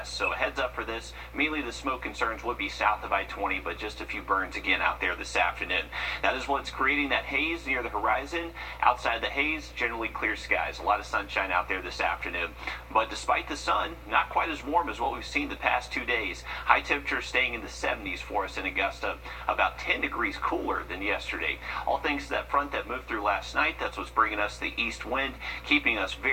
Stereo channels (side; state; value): both; identical; correlation 1.00